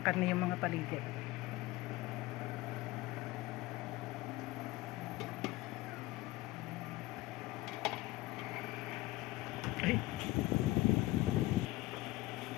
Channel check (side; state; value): right; quieter; 19.0 dB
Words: karne yung mga paligid. Ay.